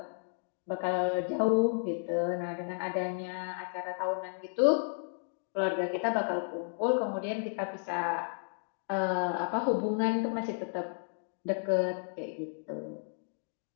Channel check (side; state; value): right; silent; digital silence